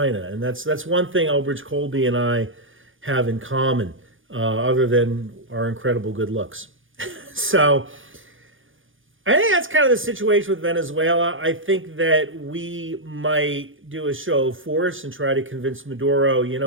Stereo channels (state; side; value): late; left; 0.58 ms